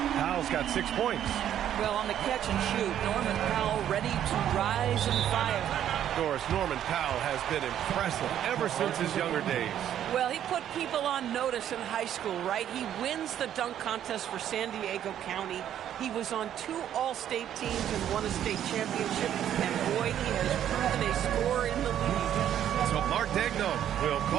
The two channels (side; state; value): left; quieter; 10.6 dB